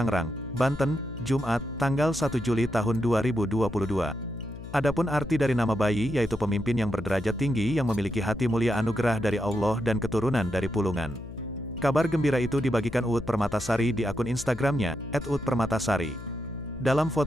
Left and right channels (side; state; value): left; noise; hum, 13 dB below the sound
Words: Banten, Jumat, tanggal 1 Juli tahun 2022. Adapun arti dari nama bayi yaitu pemimpin yang berderajat tinggi yang memiliki hati mulia anugerah dari Allah dan keturunan dari Pulungan. Kabar gembira itu dibagikan Uut Permatasari di akun Instagramnya, @uutpermatasari. Dalam